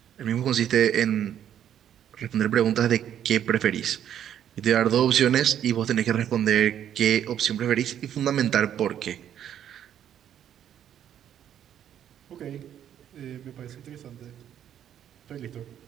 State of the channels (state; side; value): quieter; left; 10.0 dB